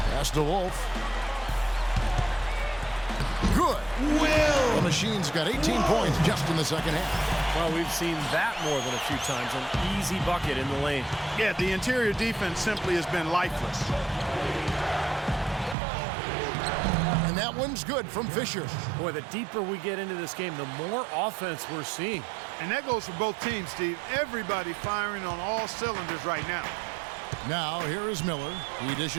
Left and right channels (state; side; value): drops out; left; at 15.8 s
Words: Pass to Wolf. Good. Will. The Machine's got 18 points just in the second half. Well, we've seen that more than a few times. An easy bucket in the lane. Yeah, the interior defense simply has been lifeless. And that one's good from Fisher. Boy, the deeper we get into this game, the more offense we're seeing. And that goes for both teams, Steve. Everybody firing on all cylinders right now. Now, here is Miller. He